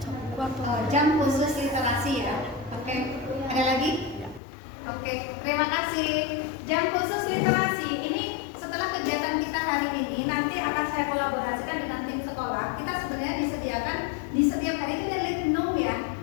buku atau Jam khusus literasi ya. Oke, ada lagi? Oke, terima kasih. Jam khusus literasi ini setelah kegiatan kita hari ini nanti akan saya kolaborasikan dengan tim sekolah. Kita sebenarnya disediakan di setiap hari itu ada litnum ya.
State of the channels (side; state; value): right; drops out; at 4.4 s